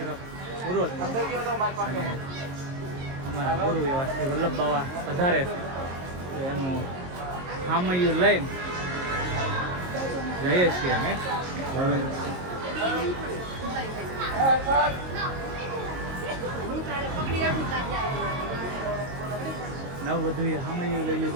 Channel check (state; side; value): late; left; 22 ms